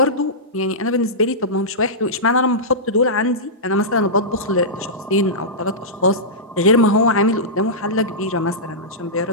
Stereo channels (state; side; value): normal; both; correlation -0.15